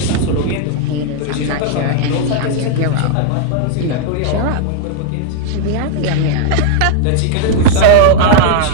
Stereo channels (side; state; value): both; different; correlation 0.00